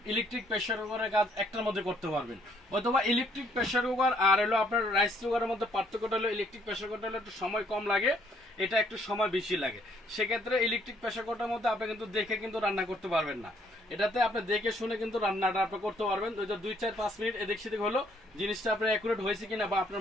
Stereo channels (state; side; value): normal; both; correlation 0.66